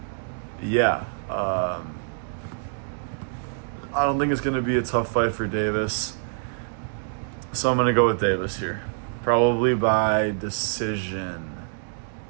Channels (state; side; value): silent; left; 61 dB below the other